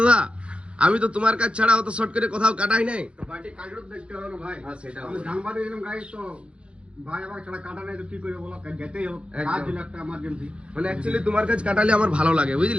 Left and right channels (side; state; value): left; late; 0.059 ms